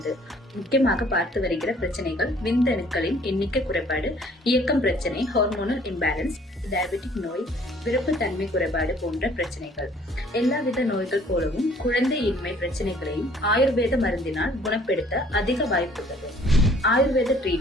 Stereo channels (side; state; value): both; normal; correlation 0.57